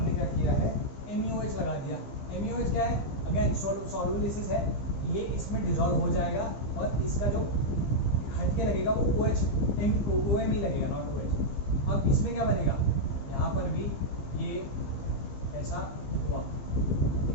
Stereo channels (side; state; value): right; late; 15 ms